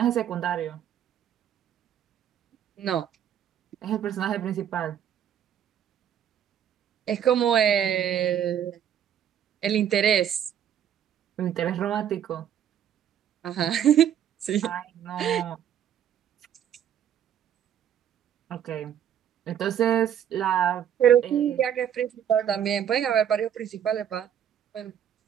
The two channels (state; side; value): quieter; left; 9.6 dB